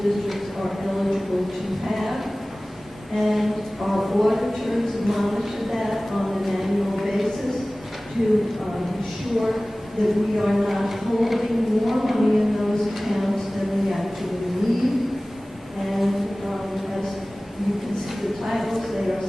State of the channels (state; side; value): normal; both; correlation 0.98